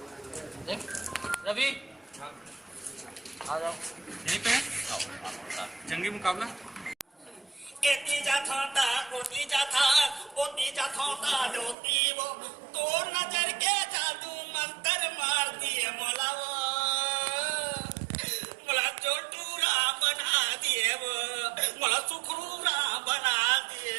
रवि आ जाओ यहीं पे है जंगी मुकाबला। एती जाथा ओती जाथा जोती वो तो नजर के जादू मंत्र मार दिए मोला वो मोला चोटूरा बना दिए वो मोला सुखरूरा बना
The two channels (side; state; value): left; drops out; at 11.8 s